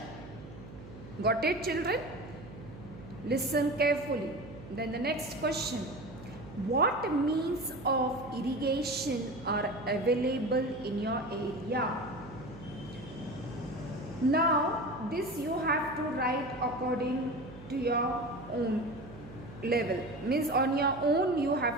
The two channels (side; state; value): right; noise; hum, 15 dB below the sound